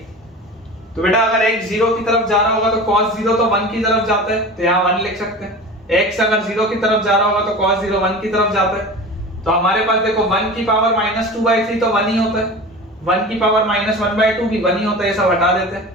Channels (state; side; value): normal; both; correlation 0.34